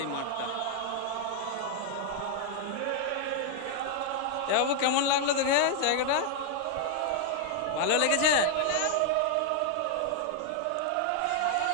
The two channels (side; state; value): both; different; correlation 0.00